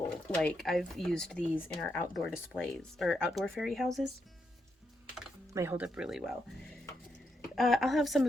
Like, I've used these in our outdoor displays or outdoor fairy houses. They hold up really well. I'll have some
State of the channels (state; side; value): normal; both; correlation 0.81